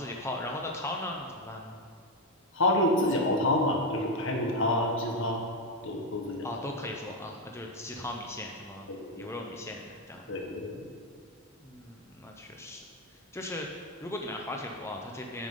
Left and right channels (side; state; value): both; normal; correlation 0.07